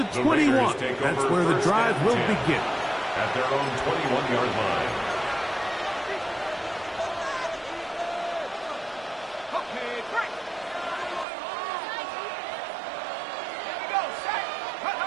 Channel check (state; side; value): drops out; left; at 11.2 s